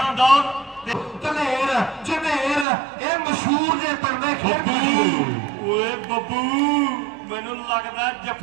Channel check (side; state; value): left; drops out; at 2.7 s